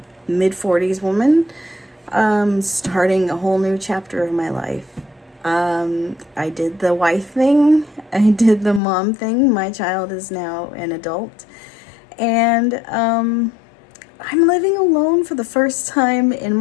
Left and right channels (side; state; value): right; drops out; at 8.8 s